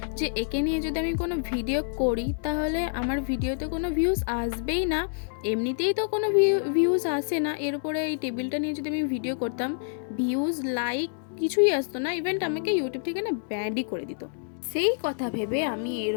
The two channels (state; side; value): silent; right; digital silence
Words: যে একে নিয়ে যদি আমি কোনো ভিডিও করি তাহলে আমার ভিডিওতে কোনো ভিউজ আসবেই না। এমনিতেই তো কোনো ভিউজ আসে না, এর উপরে এই টেবিলটা নিয়ে যদি আমি ভিডিও করতাম ভিউজ লাইক কিছুই আসতো না, ইভেন আমাকে ইউটিউব থেকে না ব্যান্ডই করে দিত। সেই কথা ভেবে আমি এর